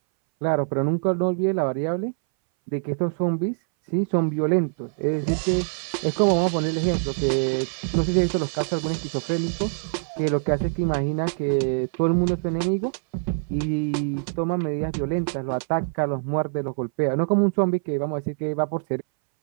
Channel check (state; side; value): silent; left; 61 dB below the other